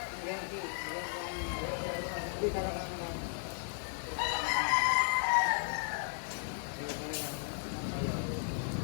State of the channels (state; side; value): silent; right; 54 dB below the other